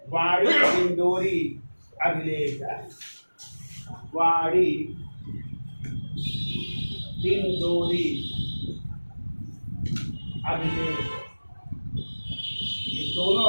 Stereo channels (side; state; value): both; inverted; correlation -1.00